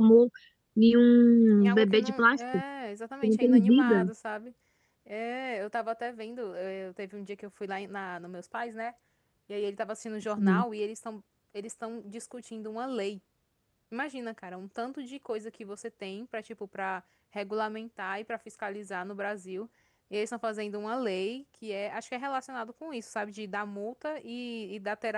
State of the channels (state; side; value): identical; both; correlation 1.00